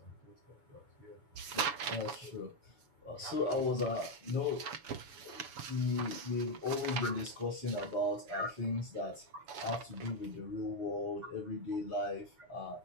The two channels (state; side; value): late; left; 7.0 ms